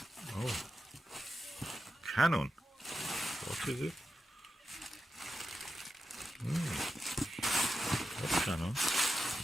Oh. Canon. What is it? What's Canon?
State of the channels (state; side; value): normal; both; correlation 0.90